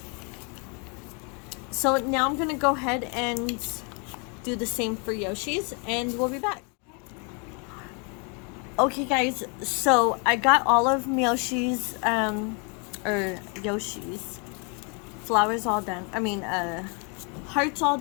So now I'm gonna go ahead and do the same for Yoshi's, and we'll be back. Okay guys, so I got all of Yoshi's flowers all done. I mean, hearts all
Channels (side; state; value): right; quieter; 35.4 dB